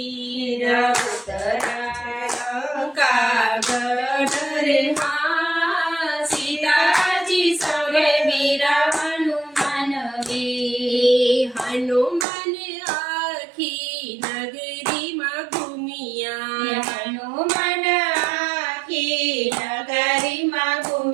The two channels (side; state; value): left; drops out; at 12.2 s